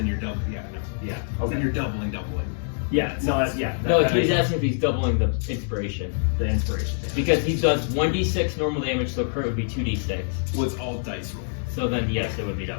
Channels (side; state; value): right; silent; digital silence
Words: you're double. Yeah, no. Yeah. Then Okay. you're doubling. Yeah. No. That's No, that he's makes asking if he's doubling the inspiration. the inspiration. Because he does 1d6 normal damage, so crit would be 2d6. Well, it's all dice roll. So then, yes, it would be